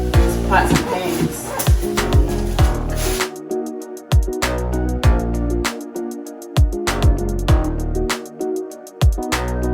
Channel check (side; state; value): both; identical; correlation 1.00